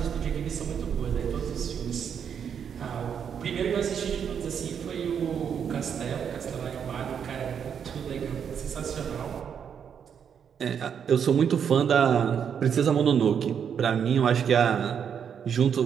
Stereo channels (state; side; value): quieter; left; 7.7 dB